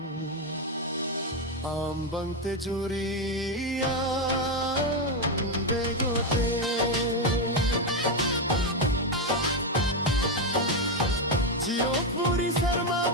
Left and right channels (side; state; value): both; normal; correlation 0.07